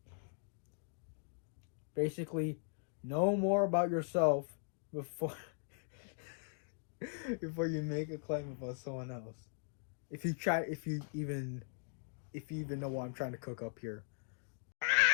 Basically, know more about yourself before before you make a claim about someone else. If you even know what I'm trying to cook up here.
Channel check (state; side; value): silent; right; digital silence